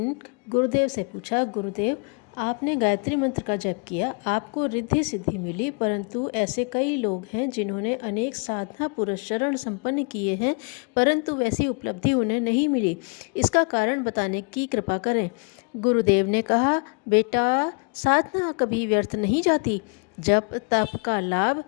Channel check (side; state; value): right; quieter; 36.1 dB